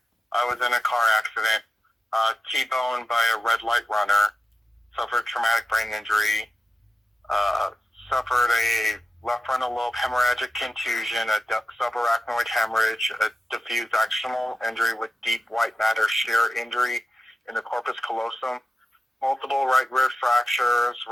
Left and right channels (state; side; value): normal; both; correlation 0.92